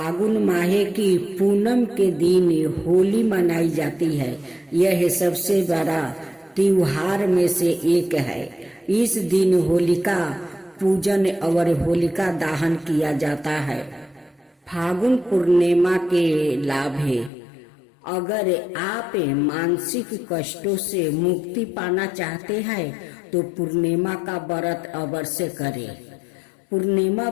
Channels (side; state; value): right; drops out; at 17.3 s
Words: माह की पूनम के दिन होली मनाई जाती है। यह सबसे बड़ा त्योहार में से एक है। इस दिन होलिका पूजन और होलिका दहन किया जाता है। फागुन पूर्णिमा के लाभ है। अगर आप मानसिक कष्टों से मुक्ति पाना चाहते हैं तो पूर्णिमा का व्रत अवश्य करें। पूर्णिमा